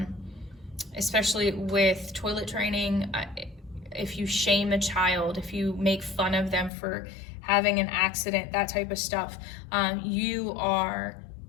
especially with toilet training. If you shame a child, if you make fun of them for having an accident, that type of stuff, you are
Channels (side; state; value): right; drops out; at 6.7 s